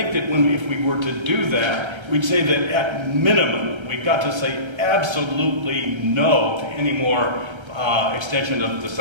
that if we were to do that, we'd say that at minimum, we've got to say absolutely no to any more extension of the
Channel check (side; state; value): left; late; 1.3 ms